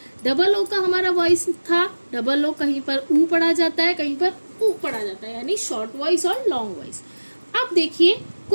डबल ओ का हमारा वॉइस था, डबल ओ कहीं पर ऊ पढ़ा जाता है, कहीं पर ऊ पढ़ा जाता है, यानी शॉर्ट वॉइस और लॉन्ग वॉइस। अब देखिए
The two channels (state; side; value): inverted; both; correlation -1.00